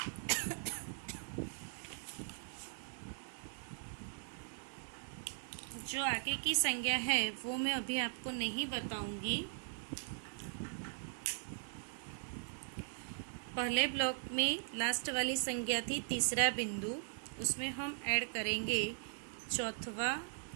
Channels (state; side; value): silent; left; digital silence